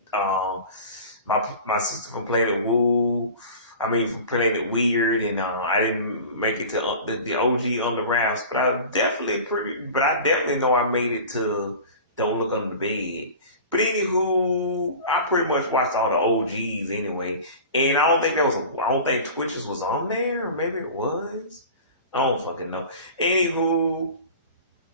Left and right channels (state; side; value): inverted; both; correlation -0.37